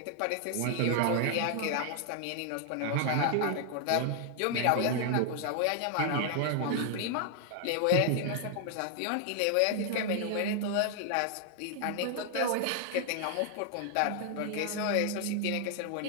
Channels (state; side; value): different; both; correlation 0.00